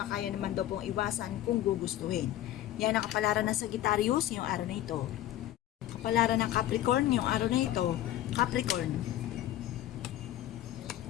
kaya naman daw pong iwasan kung gugustuhin. Yan ang kapalaran ng Sagittarius ngayong araw na ito. Kapalaran ng Capricorn ngayong araw na ito. Capricorn.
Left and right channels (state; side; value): quieter; right; 13.3 dB